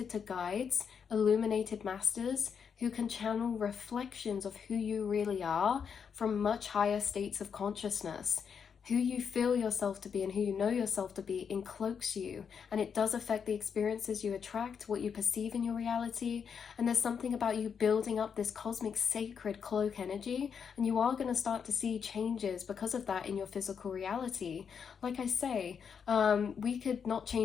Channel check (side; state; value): right; quieter; 6.8 dB